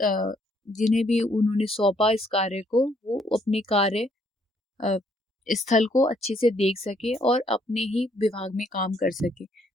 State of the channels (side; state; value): both; normal; correlation 0.68